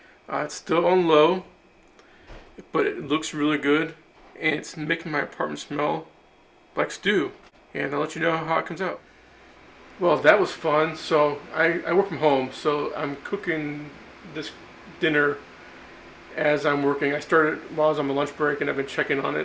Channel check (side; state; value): both; identical; correlation 1.00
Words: It's still on low, but it looks really good, and it's making my apartment smell like stew. And I'll let you know how it comes out. Well, that was fun. So I work from home, so I'm cooking this dinner as I'm working. I started while I was on my lunch break, and I've been checking on